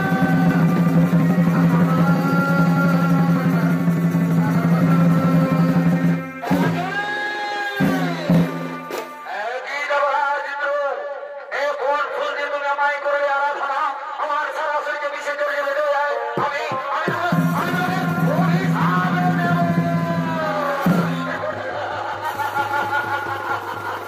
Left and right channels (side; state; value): both; identical; correlation 1.00